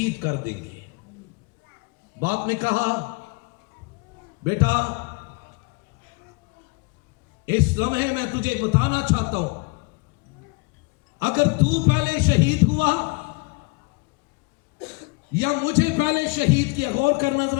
کر دیں گے. باپ نے کہا بیٹا اس لمحے میں تجھے بتانا چاہتا ہوں، اگر تو پہلے شہید ہوا یا مجھے پہلے شہید کیا، غور کرنا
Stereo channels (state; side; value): quieter; right; 28.5 dB